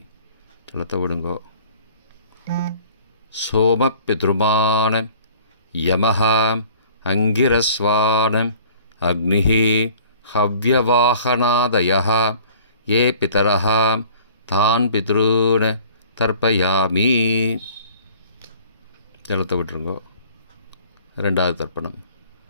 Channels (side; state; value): both; inverted; correlation -0.51